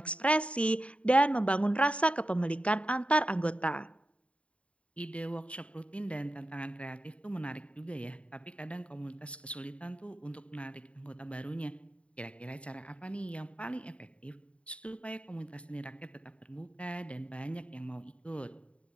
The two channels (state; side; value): late; right; 0.062 ms